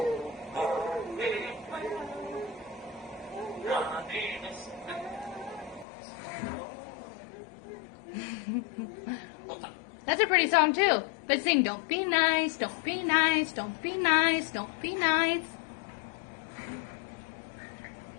That's a pretty song too. Let's sing, don't be nice, don't be nice, don't be nice, don't be nice.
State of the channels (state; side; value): drops out; right; at 5.9 s